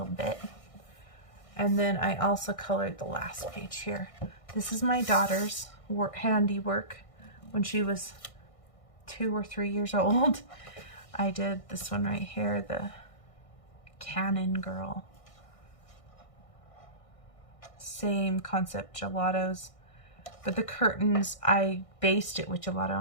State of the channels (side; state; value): right; late; 1.6 ms